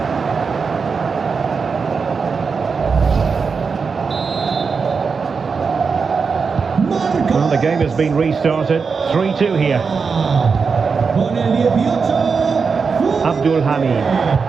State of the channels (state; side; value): quieter; left; 5.3 dB